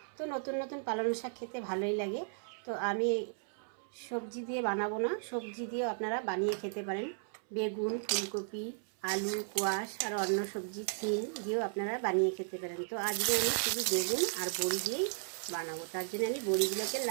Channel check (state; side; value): silent; left; 54 dB below the other